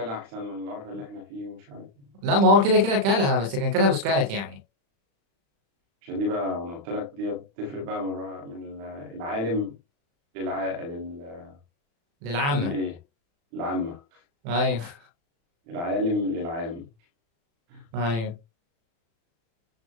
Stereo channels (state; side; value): late; left; 35 ms